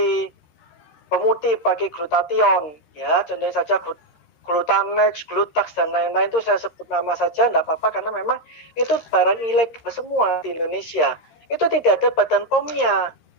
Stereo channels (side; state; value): right; late; 13 ms